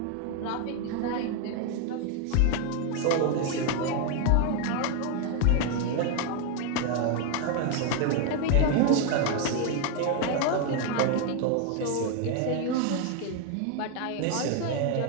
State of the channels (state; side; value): different; both; correlation 0.01